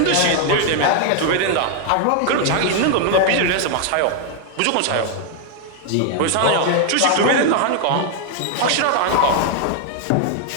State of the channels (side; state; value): both; different; correlation 0.00